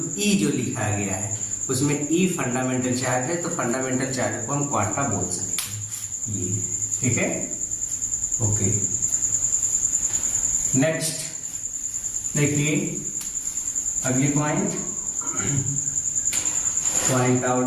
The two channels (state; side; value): identical; both; correlation 1.00